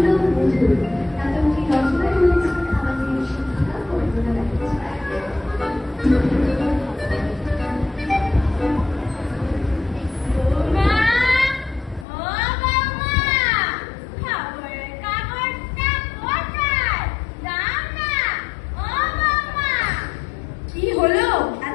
নাটকটি রচনা করেছেন আমাদের শিক্ষিকা কল্পনা ব্যানার্জি।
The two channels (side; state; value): right; drops out; at 12.1 s